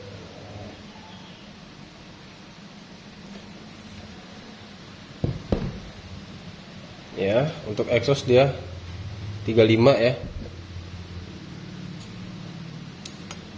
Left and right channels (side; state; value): both; identical; correlation 1.00